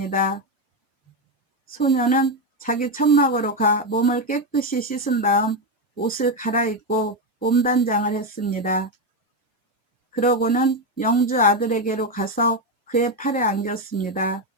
소녀는 자기 천막으로 가 몸을 깨끗이 씻은 다음 옷을 갈아입고 몸단장을 했습니다. 그러고는 영주 아들에게로 가서 그의 팔에 안겼습니다.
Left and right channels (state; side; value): normal; both; correlation 0.09